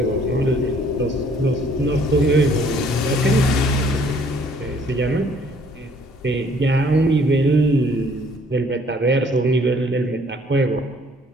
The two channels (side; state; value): both; normal; correlation 0.60